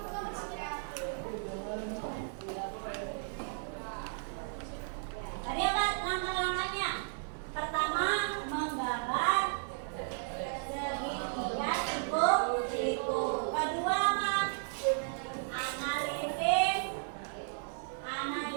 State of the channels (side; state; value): left; silent; digital silence